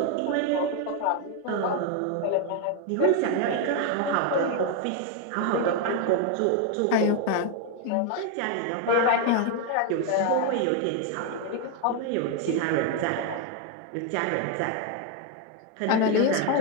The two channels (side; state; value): both; different; correlation 0.01